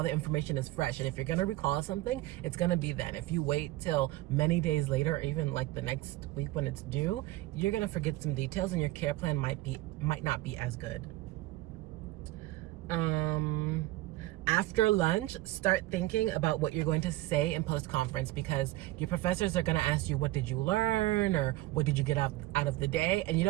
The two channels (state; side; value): quieter; left; 17.7 dB